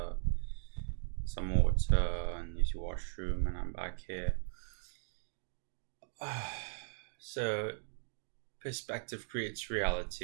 some water and used the washroom, and I'm back here. So, perspective creates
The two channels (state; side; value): silent; left; digital silence